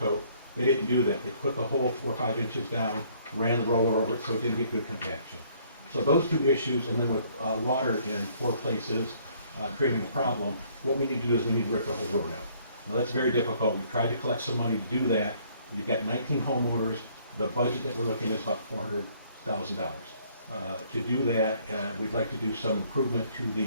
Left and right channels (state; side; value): inverted; both; correlation -0.62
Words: They didn't do that. They put the whole 4 or 5 inches down, ran the roller over it so it didn't get good compaction. So those 2 issues, and then with water in 4 places creating a problem, what we need to do is we need to rip the whole road out. Now that's very difficult. We've tried to collect some money to do that. You've got 19 homeowners. The budget that we're looking at is about $400,000. To do that, we'd like to do some improvement to